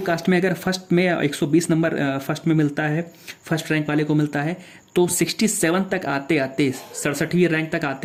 कास्ट में अगर फर्स्ट में 120 नंबर फर्स्ट में मिलता है, फर्स्ट रैंक वाले को मिलता है, तो 67 तक आते आते 67वीं रैंक तक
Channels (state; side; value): identical; both; correlation 1.00